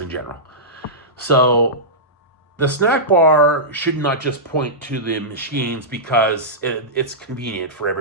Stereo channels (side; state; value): both; normal; correlation -0.14